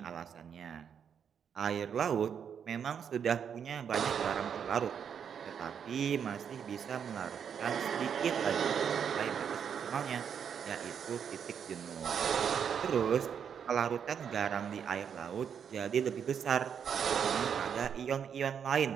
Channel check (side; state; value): left; quieter; 7.7 dB